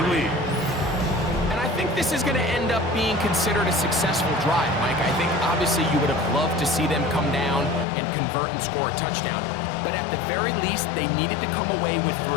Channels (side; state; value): right; drops out; at 7.9 s